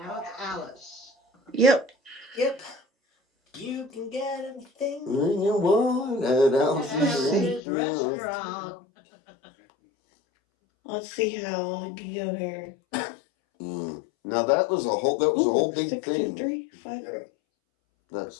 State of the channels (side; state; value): right; drops out; at 7.6 s